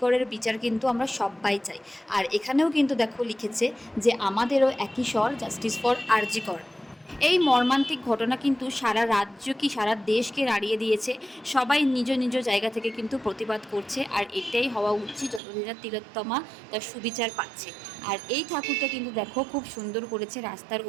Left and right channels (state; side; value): drops out; left; at 15.4 s